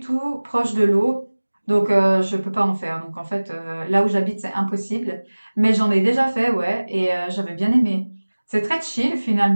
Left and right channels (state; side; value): inverted; both; correlation -1.00